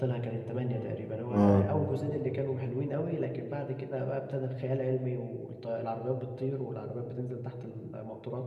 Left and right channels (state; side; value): identical; both; correlation 1.00